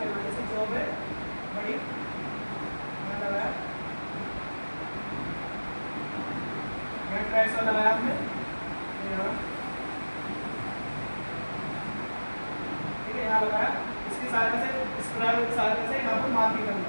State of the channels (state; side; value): inverted; both; correlation -1.00